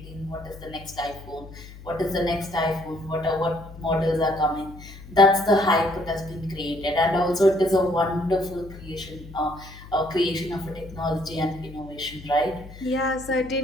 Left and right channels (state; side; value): noise; left; hum, 16 dB below the sound